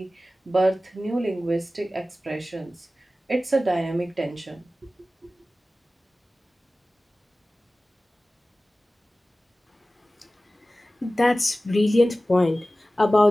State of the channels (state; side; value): normal; both; correlation 0.96